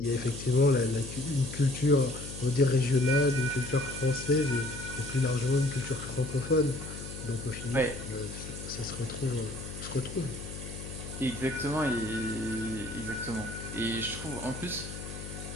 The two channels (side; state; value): left; noise; hum, 10 dB below the sound